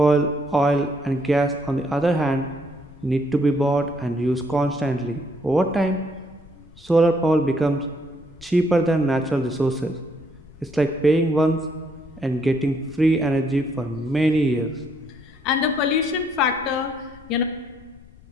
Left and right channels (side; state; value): left; noise; rumble, 23 dB below the sound